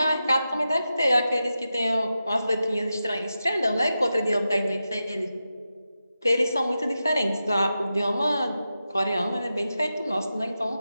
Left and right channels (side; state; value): both; inverted; correlation -0.90